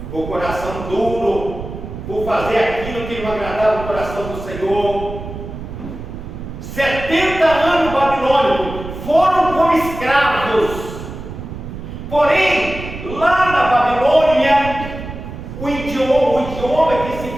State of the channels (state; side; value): noise; right; rumble, 10 dB below the sound